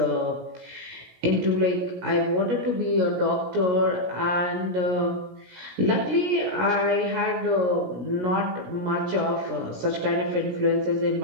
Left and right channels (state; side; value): late; left; 17 ms